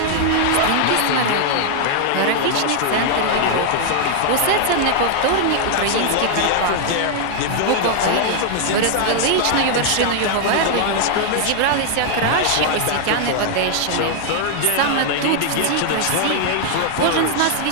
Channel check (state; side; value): different; both; correlation 0.00